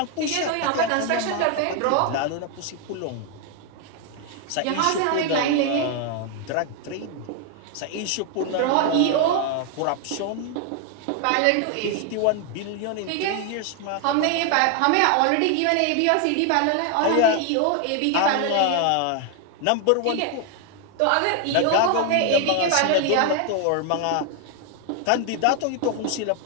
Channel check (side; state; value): both; different; correlation 0.01